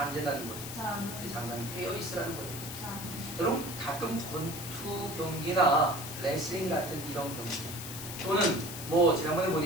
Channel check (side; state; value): left; noise; hiss, 9 dB below the sound